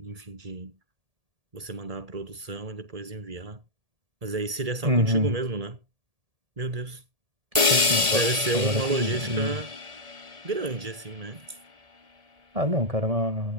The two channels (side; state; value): left; late; 1.8 ms